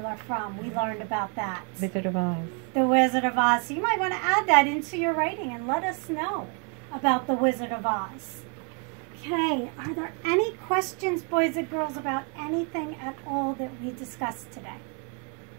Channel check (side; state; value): left; quieter; 37.1 dB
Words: from? We learned about that. Wizard of Oz. The Wizard of Oz. So you might want to add that into your writing and let us know about the Wizard of Oz. Okay, are there any questions, boys and girls, about anything at all that we discussed today?